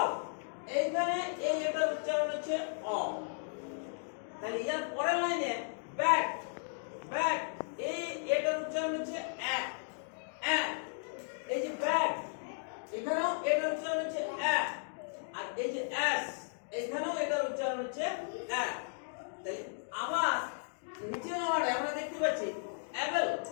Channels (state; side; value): silent; right; digital silence